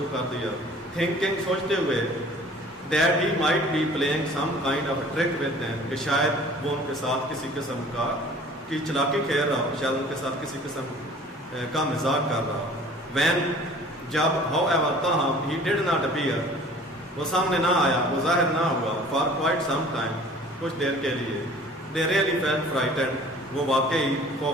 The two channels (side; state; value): both; normal; correlation 0.48